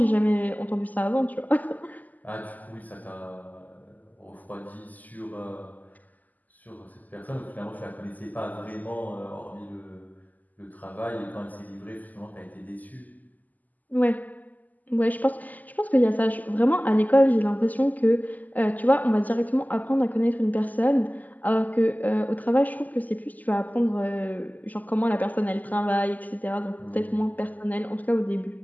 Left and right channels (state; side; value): late; right; 0.081 ms